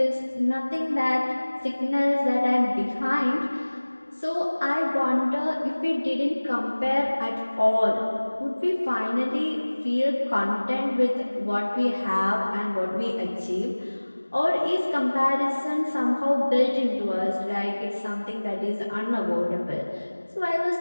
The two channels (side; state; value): both; inverted; correlation -1.00